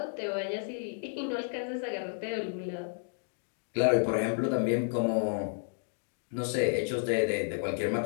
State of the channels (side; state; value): right; silent; digital silence